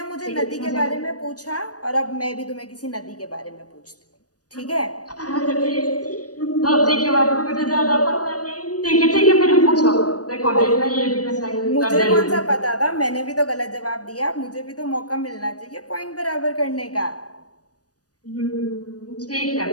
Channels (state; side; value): late; right; 0.68 ms